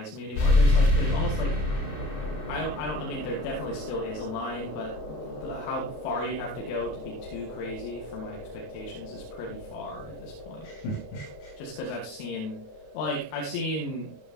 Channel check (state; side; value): late; right; 28 ms